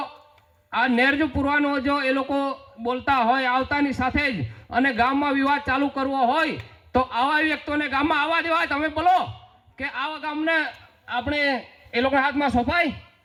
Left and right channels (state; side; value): identical; both; correlation 1.00